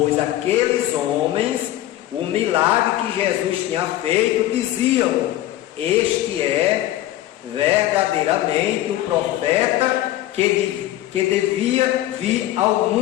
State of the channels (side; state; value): right; quieter; 14.4 dB